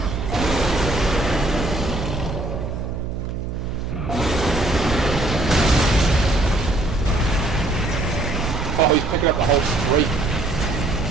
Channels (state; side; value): noise; right; hum, 6 dB below the sound